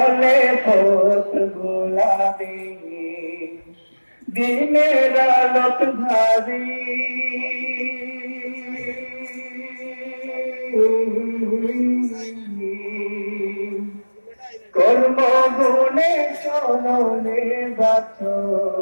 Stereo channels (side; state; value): both; inverted; correlation -1.00